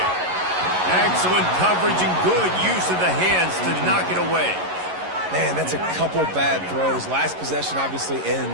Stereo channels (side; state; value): left; late; 11 ms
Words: Excellent coverage and good use of the hands to knock it away. Man, that's a couple bad throws. Last possession obviously